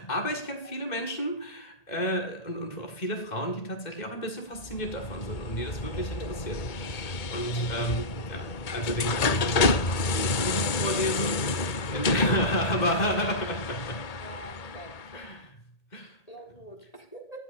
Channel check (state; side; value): late; right; 1.8 ms